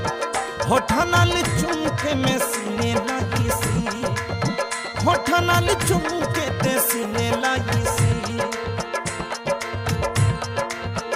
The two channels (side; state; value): both; identical; correlation 1.00